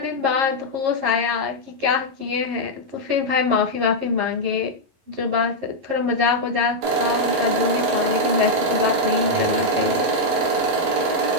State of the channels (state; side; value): late; left; 11 ms